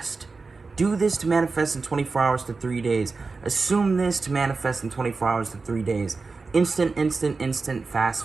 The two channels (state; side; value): quieter; left; 4.2 dB